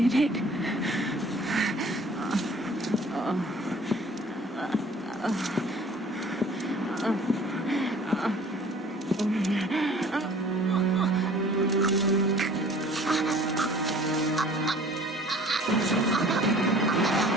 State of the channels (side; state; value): both; normal; correlation 0.50